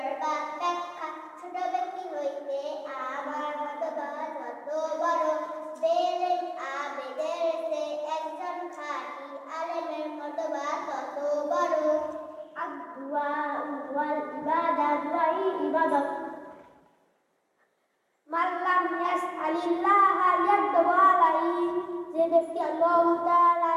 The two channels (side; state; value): both; identical; correlation 1.00